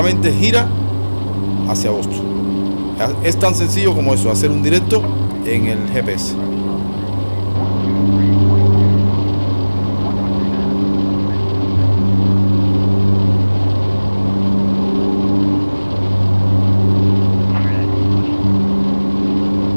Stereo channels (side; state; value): both; inverted; correlation -1.00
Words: gira hacia Boston. Es tan sencillo como eso, hacer un directo en el GPS.